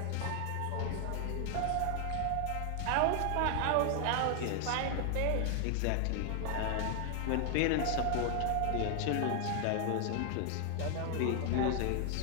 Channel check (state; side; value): different; both; correlation 0.00